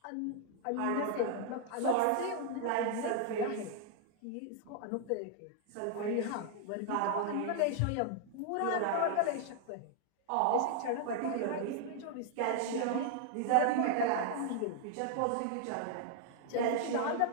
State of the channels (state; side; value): different; both; correlation 0.00